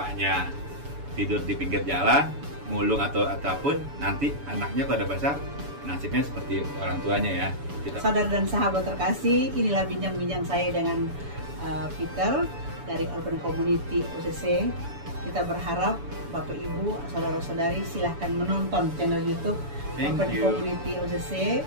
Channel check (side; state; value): left; late; 7.0 ms